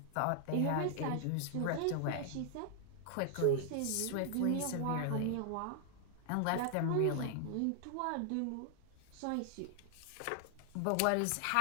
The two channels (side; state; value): both; different; correlation 0.00